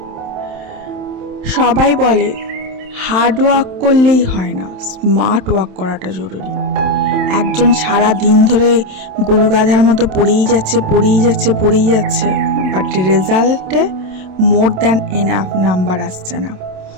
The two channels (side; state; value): left; late; 27 ms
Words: সবাই বলে হার্ড ওয়ার্ক করলেই হয় না, স্মার্ট ওয়ার্ক করাটা জরুরি. একজন সারা দিন ধরে গরু গাধার মতো পড়েই যাচ্ছে, বাট রেজাল্টে মোর দ্যান এনাফ নাম্বার আসছে না.